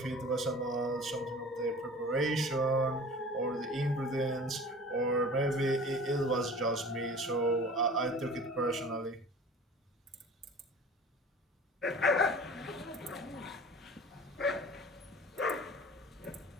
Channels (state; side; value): normal; both; correlation 0.42